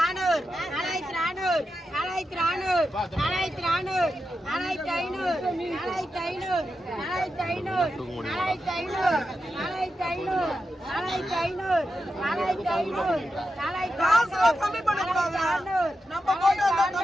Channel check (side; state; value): both; normal; correlation 0.89